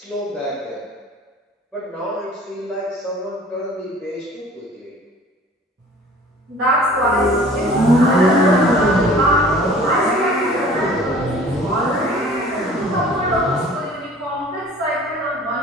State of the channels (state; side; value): normal; both; correlation 0.48